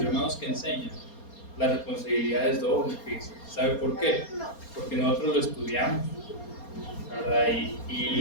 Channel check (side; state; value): right; late; 4.3 ms